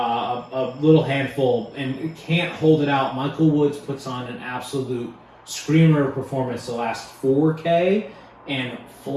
little handful, and can't hold it out. Michael Woods puts on an absolute screamer performance the last 4K and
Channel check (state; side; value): identical; both; correlation 1.00